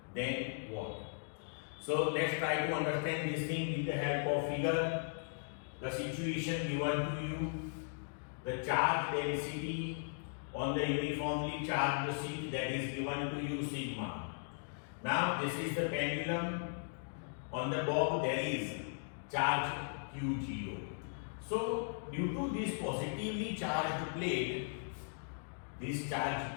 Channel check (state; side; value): silent; right; digital silence